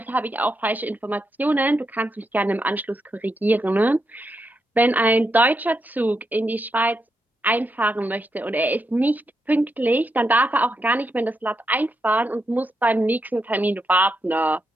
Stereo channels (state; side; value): normal; both; correlation 0.83